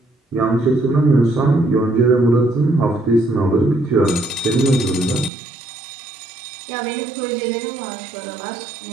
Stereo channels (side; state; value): left; drops out; at 5.3 s